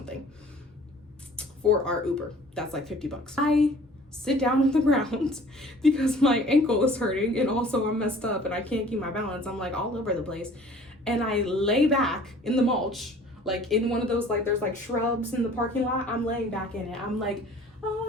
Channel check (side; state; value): both; normal; correlation 0.50